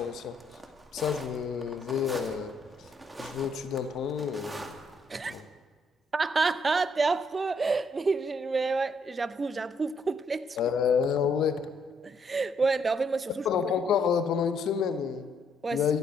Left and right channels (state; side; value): normal; both; correlation 0.72